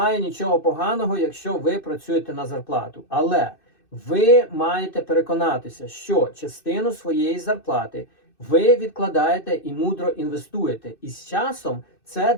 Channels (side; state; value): right; late; 2.6 ms